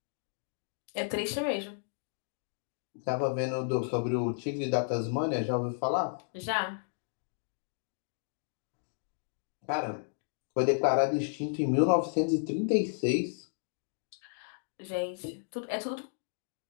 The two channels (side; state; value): right; silent; digital silence